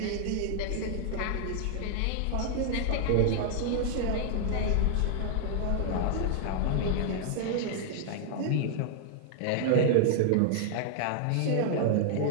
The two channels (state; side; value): different; both; correlation -0.01